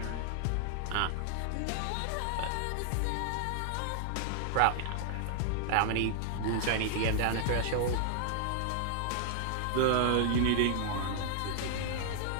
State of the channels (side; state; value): both; different; correlation -0.01